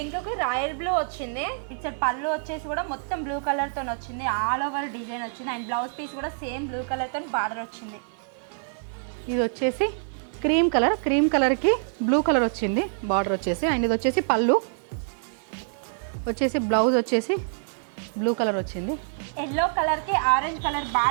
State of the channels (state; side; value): silent; left; 61 dB below the other